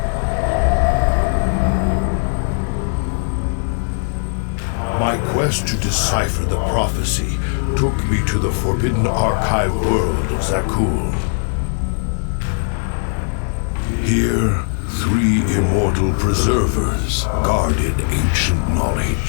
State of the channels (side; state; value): right; silent; 65 dB below the other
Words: My quest to decipher the prophecy took me to the forbidden archive world of Zeratul. Here, 3 immortal preservers guarded ancient